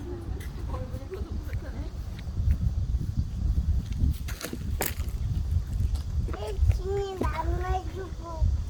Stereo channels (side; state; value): both; identical; correlation 1.00